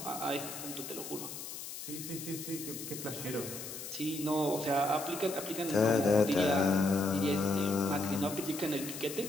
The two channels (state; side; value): noise; left; hiss, 9 dB below the sound